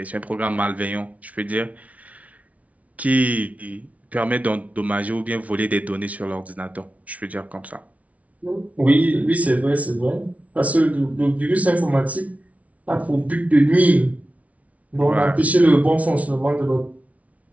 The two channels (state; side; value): late; left; 0.068 ms